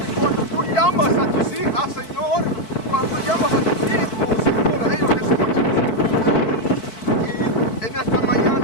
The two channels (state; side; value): late; right; 4.6 ms